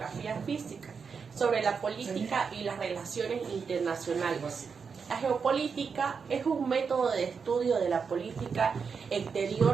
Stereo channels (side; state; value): left; quieter; 5.8 dB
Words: física sobre la política y las relaciones internacionales. La geopolítica es un método de estudio de la política